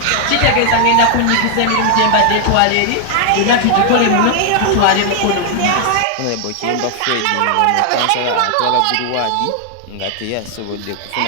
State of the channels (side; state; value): both; different; correlation 0.00